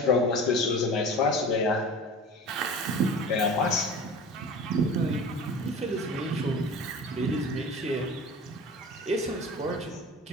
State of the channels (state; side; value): normal; both; correlation 0.37